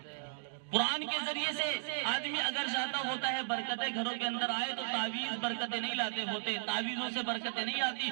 قرآن کے ذریعے سے آدمی اگر چاہتا ہوتا ہے برکتیں گھروں کے اندر آئے تو تعویذ برکتیں نہیں لاتے ہوتے, تعویذوں سے برکتیں نہیں آتی,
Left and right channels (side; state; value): left; silent; digital silence